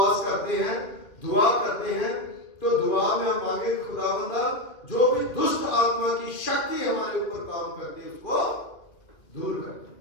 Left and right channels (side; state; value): right; late; 2.2 ms